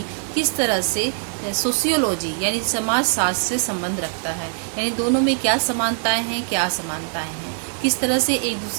किस तरह से सोशियोलॉजी यानी समाज शास्त्र से संबंध रखता है, यानी दोनों में क्या समानताएं हैं, क्या असमानताएं हैं, किस तरह से एक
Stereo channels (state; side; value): silent; left; digital silence